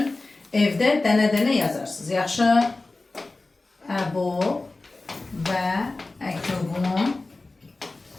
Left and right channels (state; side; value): quieter; right; 3.2 dB